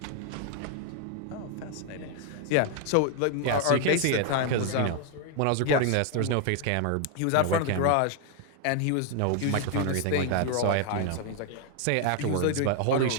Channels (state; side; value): different; both; correlation 0.01